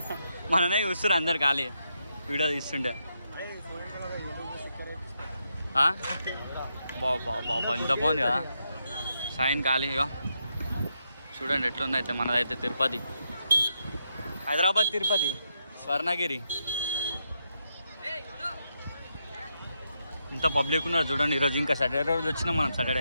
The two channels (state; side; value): inverted; both; correlation -0.82